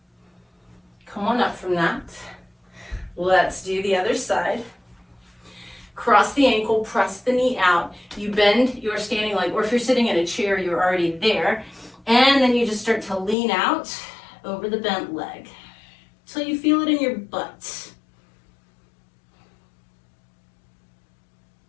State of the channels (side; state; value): right; drops out; at 13.4 s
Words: Come on up from that. Let's do the other side. Cross the ankle, press the knee out. You bend your standing leg, or if you're sitting in a chair, you're already there. And then you just start to lean out over the bent leg till you feel it in your butt.